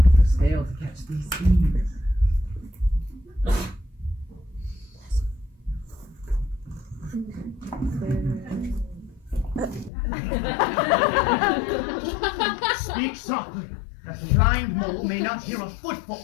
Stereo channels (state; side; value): drops out; right; at 9.9 s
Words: Fail to catch these thieves. Speak softly, that the blind mole may not hear a